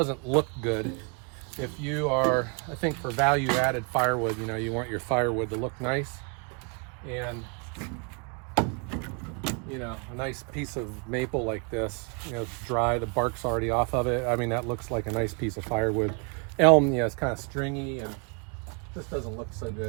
look good. If you are, I think for value-added firewood, you want your firewood to look nice. And, a nice piece of maple like this, it's dry, the bark's already off of it. I mean, that looks like a nice piece of firewood. Elm, it's kind of stringy and just doesn't look so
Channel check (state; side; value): quieter; left; 35.9 dB